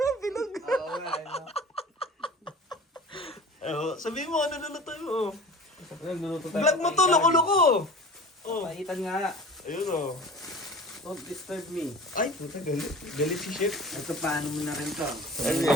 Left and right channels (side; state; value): both; normal; correlation 0.39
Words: bilog. Oo nga, ano. Sabihin mo, ano lulutuin mo? Nagluluto tayo. Vlog mo to, loko-loko! Oh, Paitan nga. ayun oh. Don't disturb me. Ay, puta, galit. Galit si Chef. Ito, paano mo na rin to? Ano